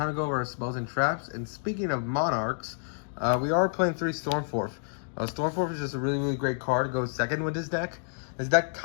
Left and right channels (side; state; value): right; silent; digital silence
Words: to go over our spells and traps. And speaking of Monarchs, we are playing 3 Stormforth. Stormforth is just a really, really great card to go second with this deck. This deck